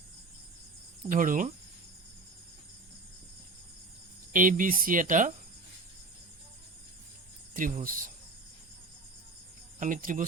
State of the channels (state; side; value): quieter; left; 3.3 dB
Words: ধৰো ABC এটা ত্ৰিভুজ আমি